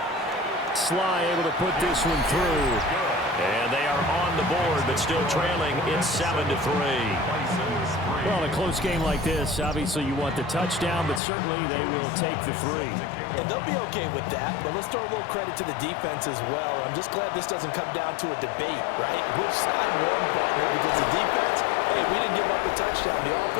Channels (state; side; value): drops out; right; at 11.2 s